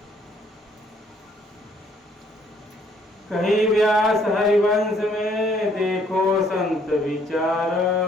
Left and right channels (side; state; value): both; normal; correlation 0.65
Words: कहीं व्यास हरिवंश में देखो संत विचार।